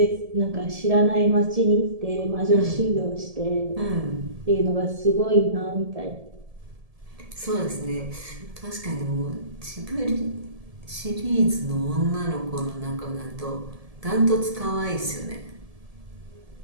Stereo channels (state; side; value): late; left; 1.7 ms